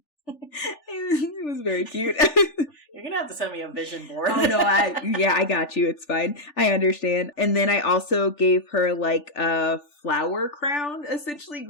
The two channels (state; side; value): late; right; 3.4 ms